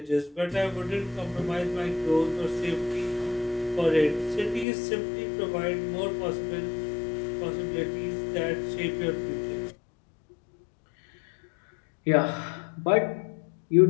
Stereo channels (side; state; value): right; drops out; at 4.7 s